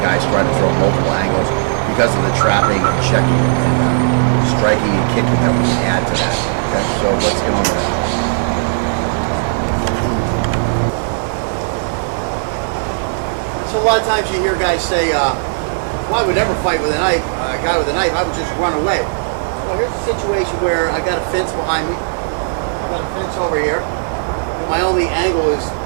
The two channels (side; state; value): left; silent; 67 dB below the other